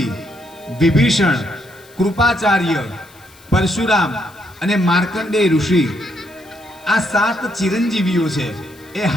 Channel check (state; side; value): noise; left; hiss, 26 dB below the sound